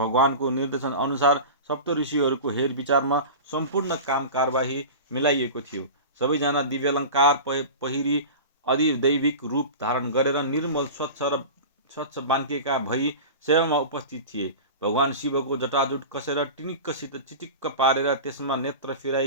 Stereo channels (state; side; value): inverted; both; correlation -0.32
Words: निर्देशन अनुसार सप्तऋषिहरूको हेरविचारमा सम्पूर्ण काम कारबाही मिलाइएको थियो। सबैजना दिव्यालङ्कार पहिरी अधिदैविक रूप धारण गरेर निर्मल स्वच्छ बान्केका भई सेवामा उपस्थित थिए। भगवान शिवको जटाजुट कसेर टिनिक्कसित चिटिक्क पारेर त्यसमा नेत्र